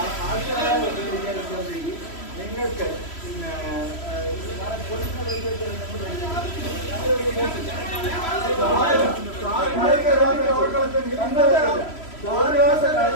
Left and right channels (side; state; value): right; late; 3.1 ms